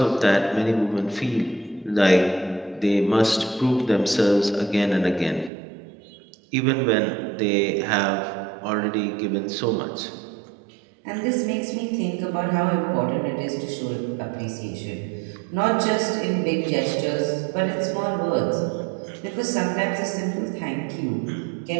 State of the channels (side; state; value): left; drops out; at 5.5 s